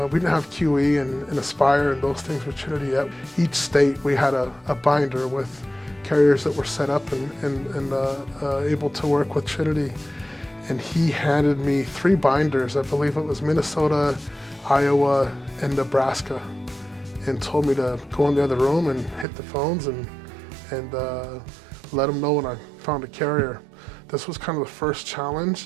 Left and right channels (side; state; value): left; drops out; at 19.2 s